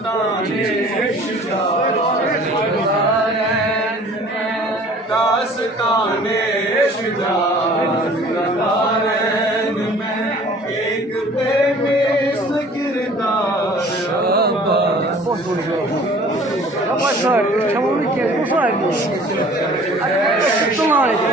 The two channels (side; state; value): both; normal; correlation 0.50